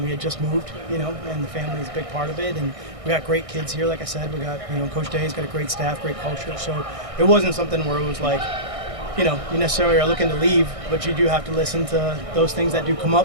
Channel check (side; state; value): left; late; 1.6 ms